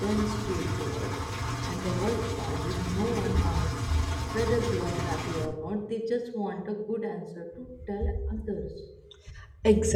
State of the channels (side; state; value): both; identical; correlation 1.00